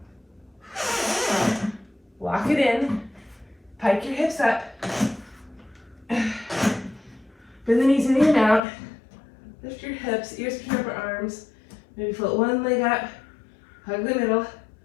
Walk it in. Pike your hips up. Bend the knees in and out. Lift your hips, ears between your arms. Maybe float one leg up. Hug the middle.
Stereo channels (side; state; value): right; drops out; at 8.6 s